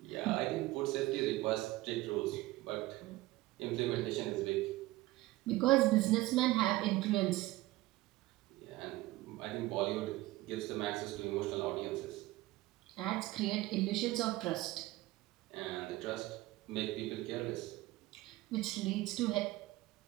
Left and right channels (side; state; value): left; quieter; 18.3 dB